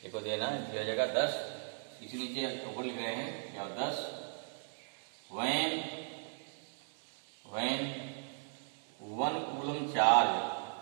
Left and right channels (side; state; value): left; silent; digital silence